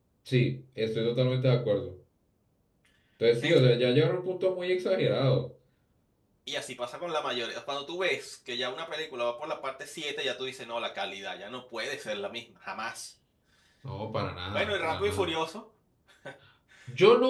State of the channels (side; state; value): both; identical; correlation 1.00